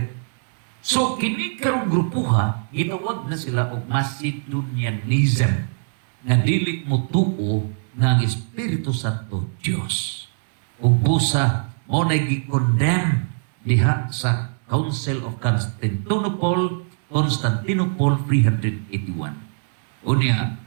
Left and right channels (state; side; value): silent; left; digital silence